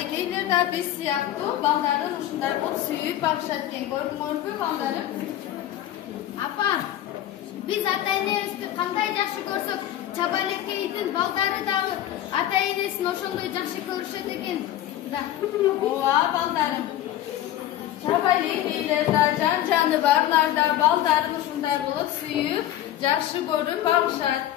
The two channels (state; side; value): quieter; right; 12.7 dB